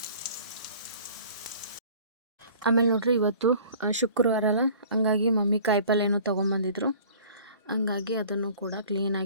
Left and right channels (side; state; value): both; inverted; correlation -0.48